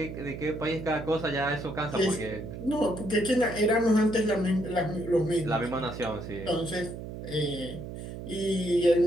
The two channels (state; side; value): noise; right; hum, 9 dB below the sound